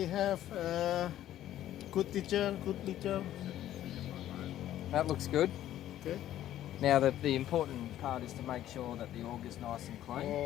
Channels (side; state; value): right; quieter; 12.6 dB